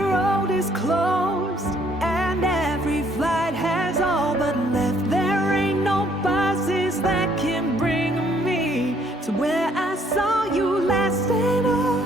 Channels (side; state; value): both; normal; correlation 0.65